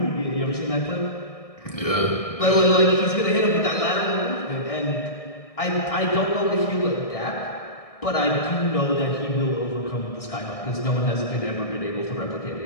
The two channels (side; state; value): right; late; 1.6 ms